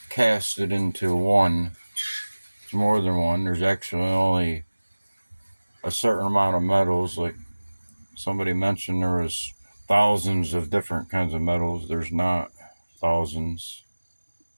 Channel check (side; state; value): both; inverted; correlation -1.00